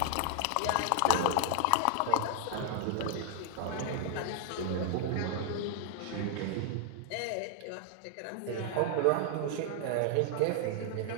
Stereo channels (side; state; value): both; different; correlation 0.00